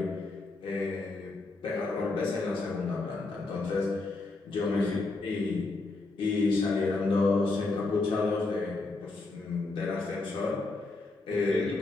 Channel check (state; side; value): quieter; right; 3.4 dB